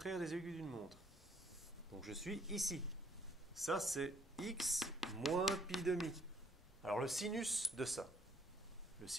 des aiguilles d'une montre. Donc, je suis ici. Ça, c'est x moins pi demi. Alors, le sinus de ça. Le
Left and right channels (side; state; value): both; normal; correlation 0.64